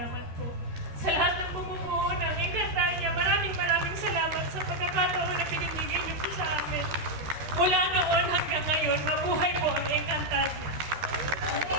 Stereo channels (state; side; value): late; left; 13 ms